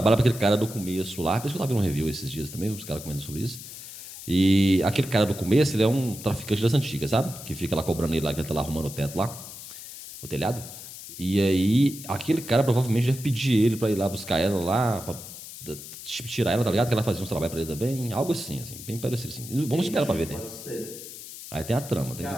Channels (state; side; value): noise; left; hiss, 13 dB below the sound